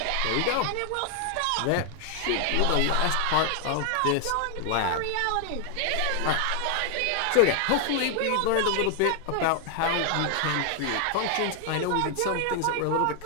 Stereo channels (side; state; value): both; different; correlation 0.00